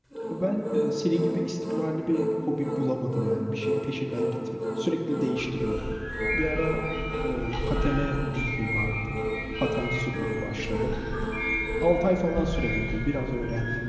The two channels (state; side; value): identical; both; correlation 1.00